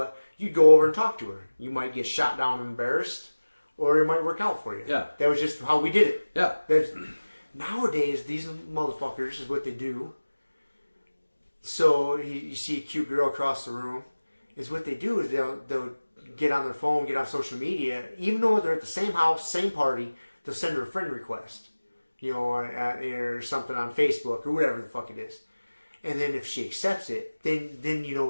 you go over and talk to her. You might get shot down and embarrassed, or it might work out for you. Yeah. That was just how we did it. Yeah. Nowadays, these motherfuckers is what they do. So you see a cute girl across the room, is what they do is they'll get on their phone, get on social media, even though they're at the same house, same party, they'll send her a friend request, you know, or something on Facebook or whatever the fuck it is. And then if she accepts it, then you know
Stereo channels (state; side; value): inverted; both; correlation -1.00